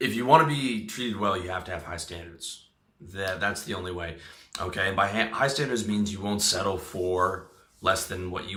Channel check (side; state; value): both; identical; correlation 1.00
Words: you want to be treated well, you have to have high standards. That's the only way, okay? And by high standards means you won't settle for less than what